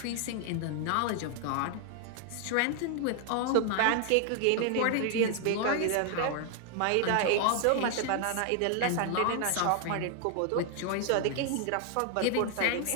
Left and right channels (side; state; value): both; different; correlation 0.00